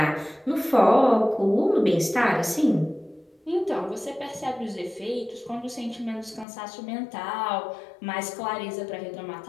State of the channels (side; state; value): right; drops out; at 6.5 s